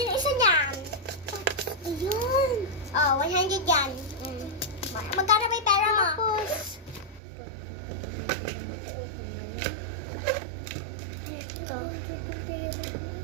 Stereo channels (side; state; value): left; drops out; at 7.2 s